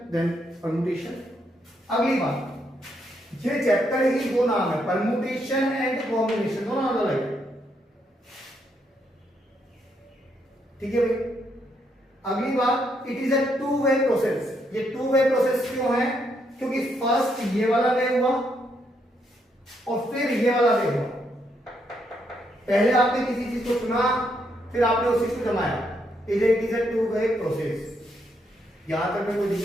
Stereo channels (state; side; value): normal; both; correlation 0.76